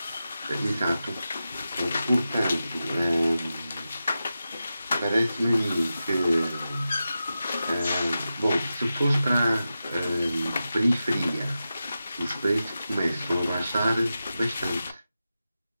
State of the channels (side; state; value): both; inverted; correlation -0.91